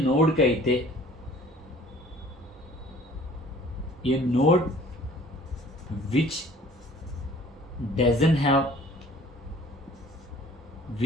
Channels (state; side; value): normal; both; correlation 0.52